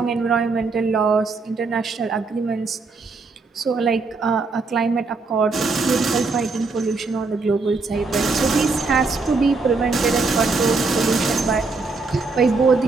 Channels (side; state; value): left; quieter; 4.0 dB